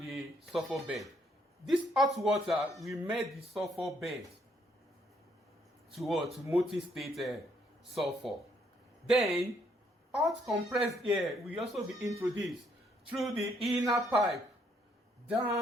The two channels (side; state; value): both; normal; correlation 0.70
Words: sulfur bed. This hot water will melt the sulfur bed to molten state sulfur. Then, hot compressed air will also be introduced through the inner pipe